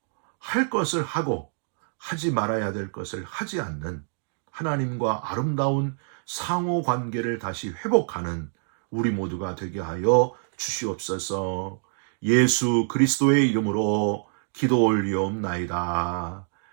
할 것을 하고 하지 말아야 될 것을 하지 않는 하나님과 아름다운 상호 관계를 다시 회복하는 우리 모두가 되게 하여 주시옵소서. 예수 그리스도의 이름으로 기도 올리옵나이다.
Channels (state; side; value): silent; left; digital silence